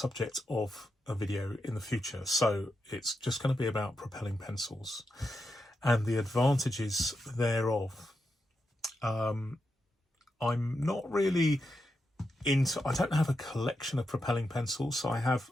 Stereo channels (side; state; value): both; normal; correlation 0.86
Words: of a video in the future. So it's just going to be about propelling pencils and the advantages thereof. I'm not really I don't have a collection of propelling pencils. I have